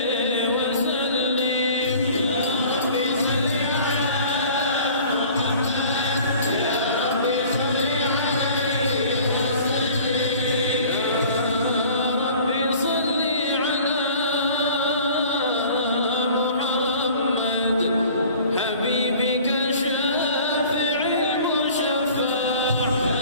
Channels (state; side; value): inverted; both; correlation -0.47